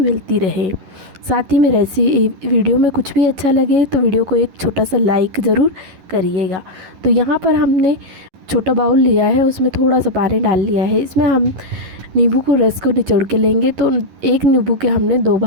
रहे। साथ ही में वीडियो में कुछ भी अच्छा लगे तो वीडियो को एक छोटा सा लाइक ज़रूर करिएगा। तो यहाँ पर हमने छोटा बाउल लिया है, उसमें थोड़ा सा पानी डाल लिया है। इसमें हम नींबू को रस को निचोड़ के लेंगे। तो एक नींबू के हमने 2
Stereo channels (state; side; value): late; left; 11 ms